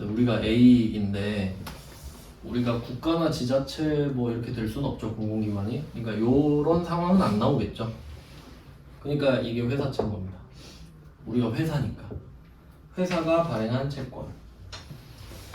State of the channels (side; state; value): both; identical; correlation 1.00